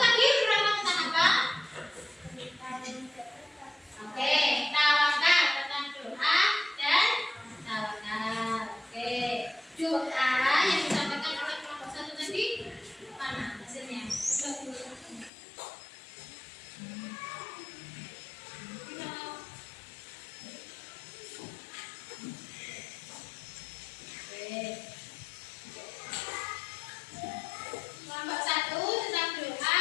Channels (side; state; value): right; drops out; at 15.3 s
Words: berapa tentang apa? Oke, tawakal tentang doa dan tawakal. Oke, doa yang disampaikan oleh kelompok 1 tadi mana hasilnya? Kelompok 1 tentang